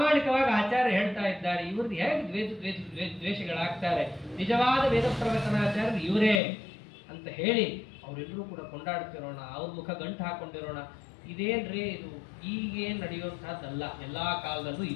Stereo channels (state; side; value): drops out; right; at 6.4 s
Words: ಆಚಾರ್ಯ ಹೇಳ್ತಾ ಇದ್ದಾರೆ, ಇವ್ರದ್ದು ಹೇಗೆ ದ್ವೇಷಗಳಾಗ್ತಾರೆ? ನಿಜವಾದ ವೇದ ಪ್ರವಚನಾಚಾರ್ಯರು ಇವರೇ ಅಂತ ಹೇಳಿ ಅವರೆಲ್ಲರೂ ಕೂಡ ಕೊಂಡಾಡ್ತಿರೋಣ, ಅವ್ರ ಮುಖ ಗಂಟು ಹಾಕೊಂಡಿರೋಣ. ಇದೇನ್ರಿ ಇದು ಈಗೇನು ನಡೆಯುವಂತಹದ್ದಲ್ಲ, ಎಲ್ಲಾ ಕಾಲದಲ್ಲೂ